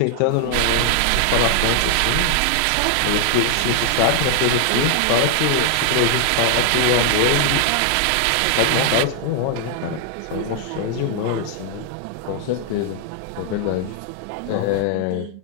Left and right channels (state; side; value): different; both; correlation 0.00